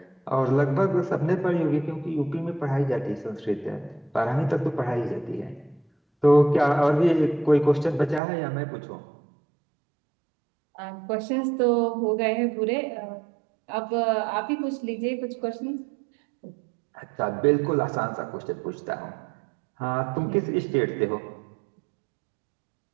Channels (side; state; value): left; drops out; at 8.2 s